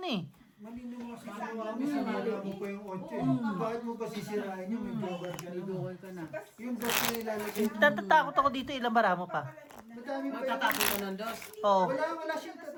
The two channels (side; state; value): both; identical; correlation 1.00